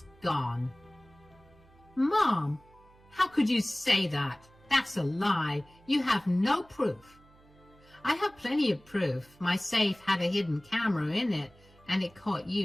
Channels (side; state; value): right; noise; hum, 27 dB below the sound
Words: gone." "Mom, how could you say that? That's a lie. You have no proof." "I have plenty of proof. My safe had a hidden camera in it, and it caught